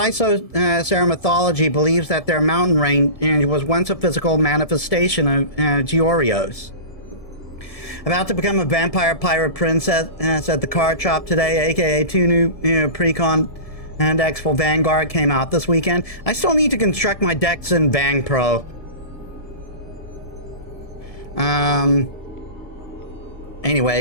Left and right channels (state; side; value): late; right; 1.7 ms